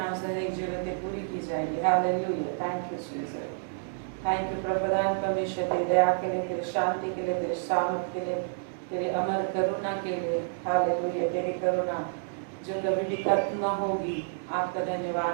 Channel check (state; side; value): silent; left; 58 dB below the other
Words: से हर एक जरूरतें पूरी की जाएगी। Hallelujah. Thank you Jesus. Thank you Prabhudan परमेश्वर, तेरी दया के लिए, तेरी शांति के लिए, तेरे सामर्थ्य के लिए, तेरे अमर करुणा के लिए। हालेलुया। तेरी करुणा जो कभी भी खत्म न होगी, आपका